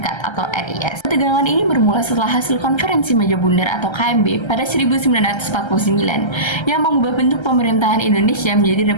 atau RIS. Ketegangan ini bermula setelah hasil konferensi meja bundar atau KMB pada 1949 yang mengubah bentuk pemerintahan Indonesia menjadi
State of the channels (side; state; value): right; late; 1.3 ms